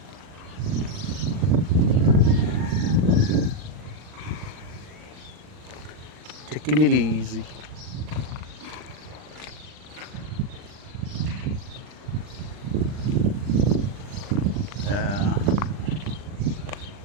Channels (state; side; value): late; left; 40 ms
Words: Taking it easy. Uh,